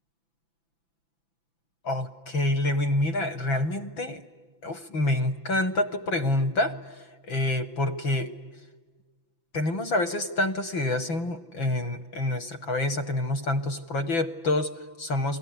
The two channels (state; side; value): late; right; 5.9 ms